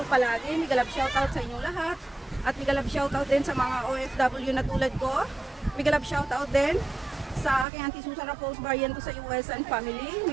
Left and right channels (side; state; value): left; drops out; at 7.7 s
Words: palagi. Migalap shoutout sa inyong lahat at migalap shoutout din sa mga OFW na tulad ko. Migalap shoutout din sa aking Auntie Susan Raffles Barriento sa US and family.